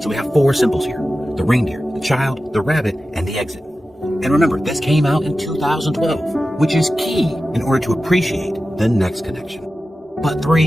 So we have 4 symbols here: the reindeer, the child, the rabbit, and the exit. And remember, this came out in 2012, which is key in order to appreciate the next connection. But 3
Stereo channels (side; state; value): both; normal; correlation 0.94